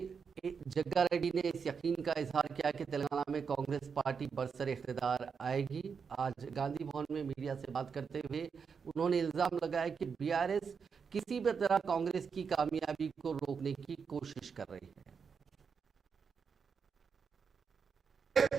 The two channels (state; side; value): quieter; left; 6.0 dB